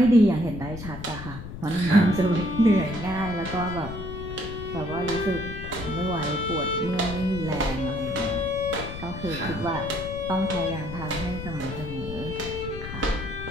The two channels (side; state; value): left; noise; rumble, 9 dB below the sound